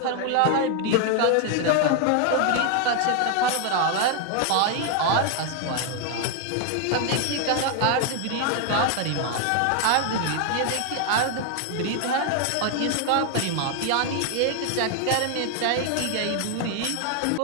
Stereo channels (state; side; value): different; both; correlation 0.00